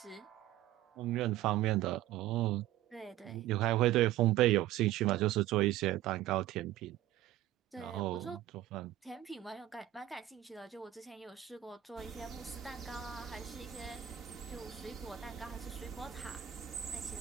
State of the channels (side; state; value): left; quieter; 13.3 dB